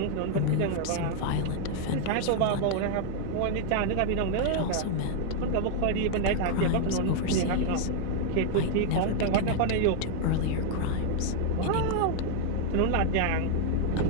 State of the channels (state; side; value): different; both; correlation 0.00